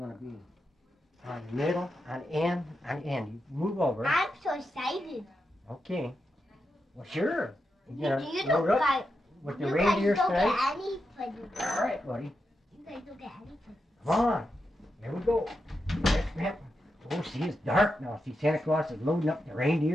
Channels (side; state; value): both; normal; correlation 0.87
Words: be? On the middle, on the end, on the end. You move over. I'm so excited. Okay. Well, sure. You don't get, with the reindeer tonight. Any presents. All right, buddy. You guys don't get any presents. Come on. Here we go. There's Grandpa. Oh, see, it's dark now. See, Santa Claus is loading up the